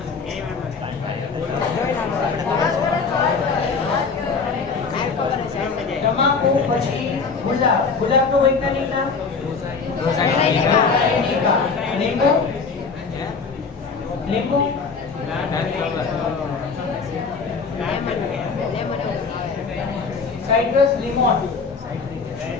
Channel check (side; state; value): right; quieter; 4.9 dB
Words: તમાકુ પછી ગુલાબ. ગુલાબનું વૈજ્ઞાનિક નામ? લીંબુ. લીંબુ. સાઇટ્રસ, લીમોન.